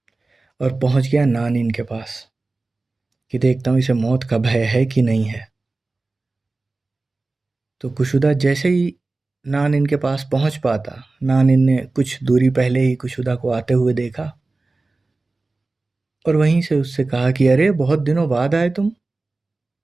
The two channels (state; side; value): quieter; left; 3.4 dB